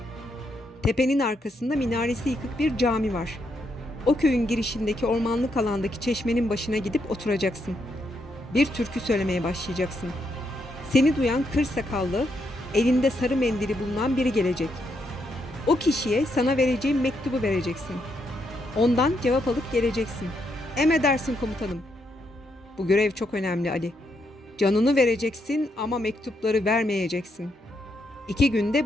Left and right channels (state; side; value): normal; both; correlation 0.78